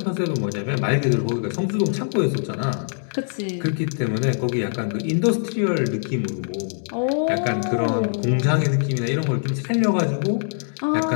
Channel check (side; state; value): right; silent; digital silence